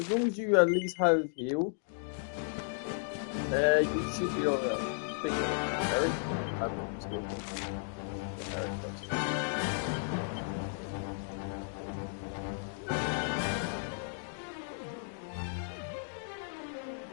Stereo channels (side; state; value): right; silent; digital silence